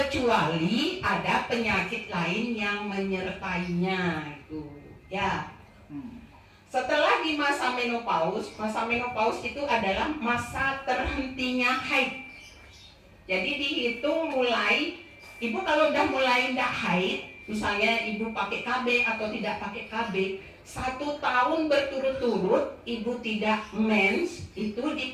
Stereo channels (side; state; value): both; identical; correlation 1.00